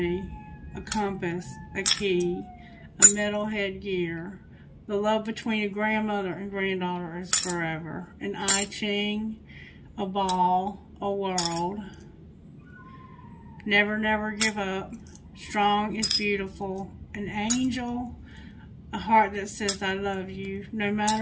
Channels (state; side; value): identical; both; correlation 1.00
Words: A compass, a key, a metal headgear. The love between a grandmother and granddaughter is forever. An I Ching, a ball, a world. Never, never give up. Strong is beautiful. An angel, a heart that says I love you, no